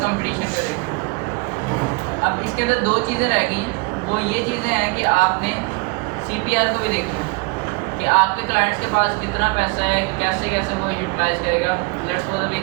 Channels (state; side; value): quieter; left; 28.4 dB